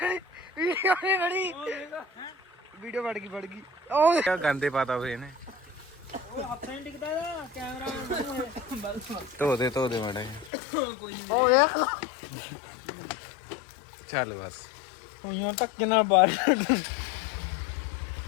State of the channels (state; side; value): drops out; right; at 10.5 s